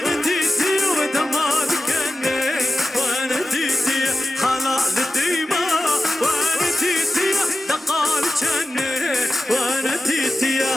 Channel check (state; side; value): normal; both; correlation 0.94